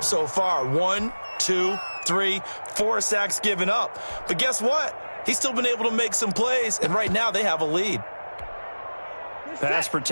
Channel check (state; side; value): inverted; both; correlation -1.00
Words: so far. 1, 2, 3, 4 sacks given up. But guess what? He's still been able to make some plays, and right now they have a lead. Pass